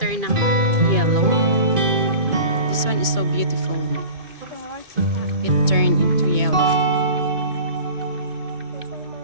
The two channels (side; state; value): left; late; 2.5 ms